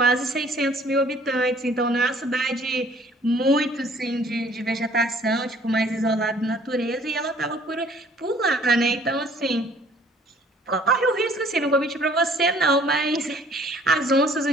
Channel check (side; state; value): both; normal; correlation 0.56